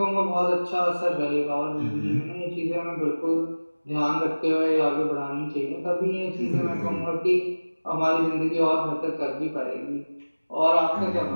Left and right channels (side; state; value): both; inverted; correlation -1.00